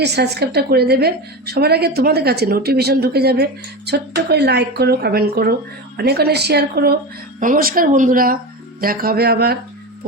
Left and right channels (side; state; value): both; normal; correlation 0.23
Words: সাবস্ক্রাইবটা করে দেবে। সবার আগে তোমাদের কাছে নোটিফিকেশন ঢুকে যাবে। ছোট্ট করে লাইক করো, কমেন্ট করো, অনেক অনেক শেয়ার করো। নমস্কার বন্ধুরা, দেখা হবে আবার